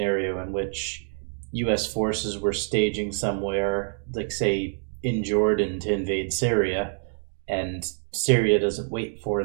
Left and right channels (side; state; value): left; silent; digital silence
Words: in which U.S. forces were staging somewhere, like say in Jordan to invade Syria, and Syria doesn't wait for